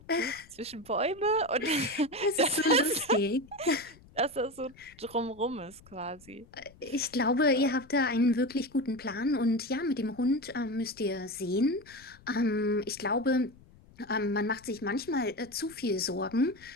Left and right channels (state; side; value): noise; left; rumble, 25 dB below the sound